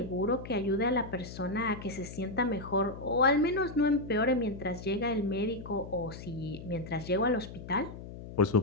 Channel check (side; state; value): left; noise; hum, 12 dB below the sound